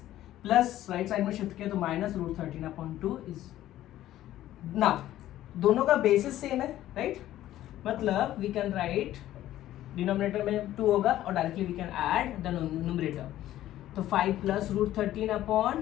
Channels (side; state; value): right; quieter; 13.6 dB